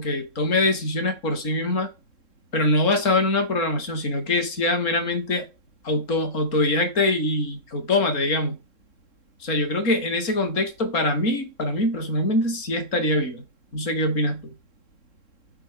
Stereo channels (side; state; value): right; late; 3.7 ms